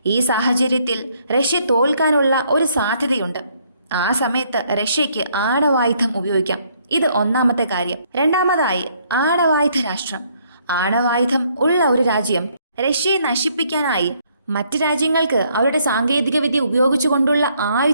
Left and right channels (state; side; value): inverted; both; correlation -0.68